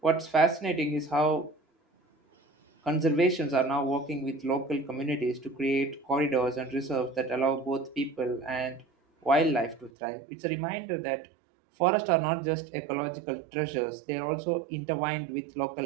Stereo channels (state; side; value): drops out; left; at 9.9 s